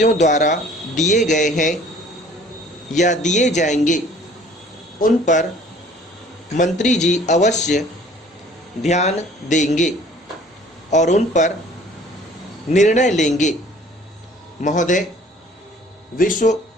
द्वारा दिए गए हैं या दिए जाएंगे, उन पर मंत्री जी अवश्य ध्यान देंगे और उन पर निर्णय लेंगे। महोदय, विश्व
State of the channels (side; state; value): both; normal; correlation 0.52